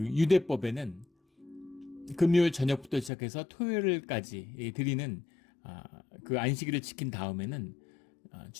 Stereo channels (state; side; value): drops out; right; at 3.1 s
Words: 금요일 저녁부터 시작해서 토요일까지 드리는 그 안식일을 지킨 다음에는